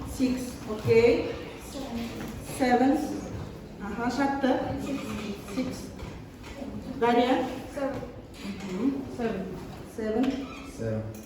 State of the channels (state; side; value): identical; both; correlation 1.00